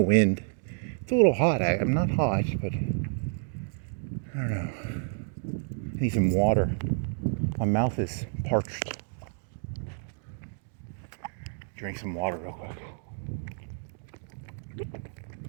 It's a little hot. I'm not hot, but I don't know. I need some water. My mouth is parched. Drink some water real quick.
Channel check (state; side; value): silent; left; digital silence